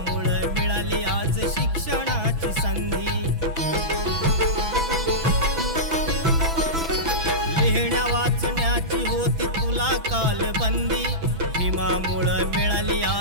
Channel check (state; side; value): late; left; 6.0 ms